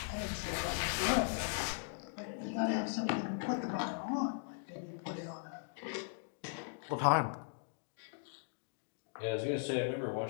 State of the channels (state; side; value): silent; right; digital silence